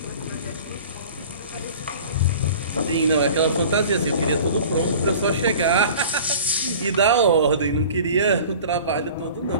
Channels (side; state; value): both; inverted; correlation -0.43